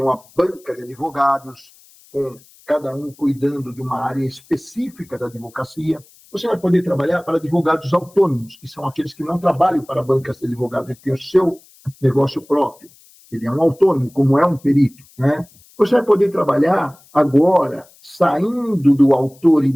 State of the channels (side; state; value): left; noise; hiss, 27 dB below the sound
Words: uma banca de advogados, com cada um cuidando de uma área específica da advocacia. Você vai poder trabalhar para advogados autônomos, que são aqueles que não trabalham para bancas de advogados, ele tem o seu negócio próprio. Ele é um autônomo, como é um perito, né? Você vai poder trabalhar agora, saindo do autor e